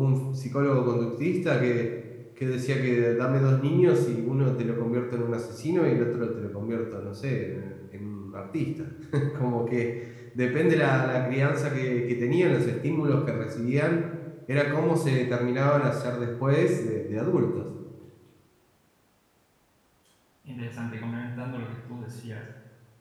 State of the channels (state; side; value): identical; both; correlation 1.00